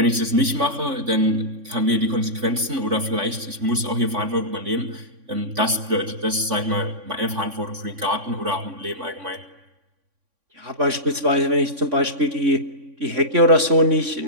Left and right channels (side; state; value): left; late; 3.6 ms